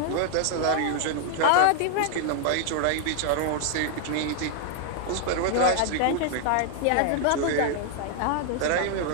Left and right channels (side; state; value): both; different; correlation -0.01